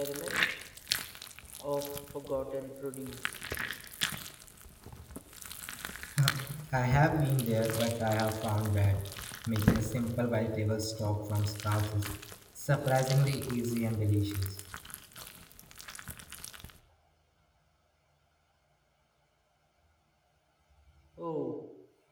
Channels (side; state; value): both; identical; correlation 1.00